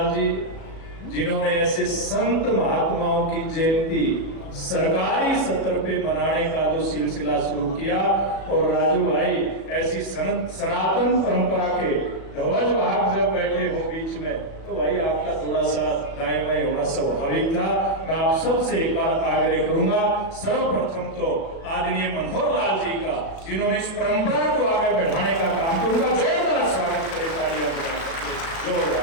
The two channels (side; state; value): right; late; 37 ms